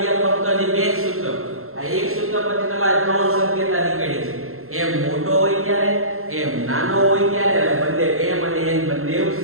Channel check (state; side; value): late; left; 0.62 ms